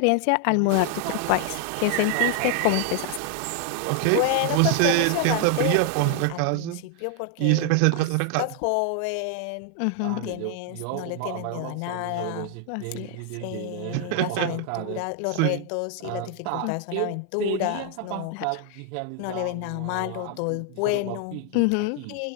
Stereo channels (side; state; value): both; different; correlation 0.00